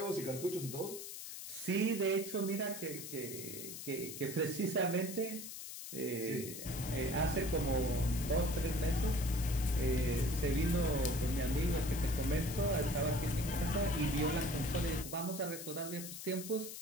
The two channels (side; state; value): left; noise; hiss, 9 dB below the sound